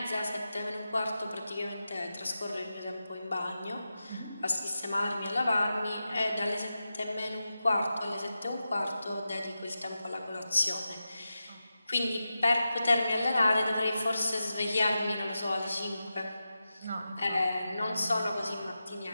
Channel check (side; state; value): both; inverted; correlation -0.91